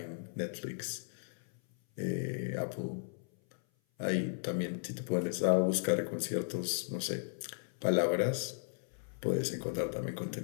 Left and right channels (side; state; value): right; silent; 54 dB below the other